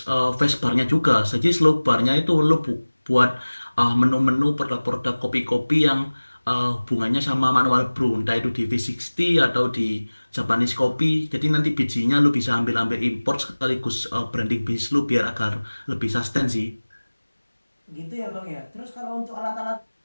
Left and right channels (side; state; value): both; inverted; correlation -1.00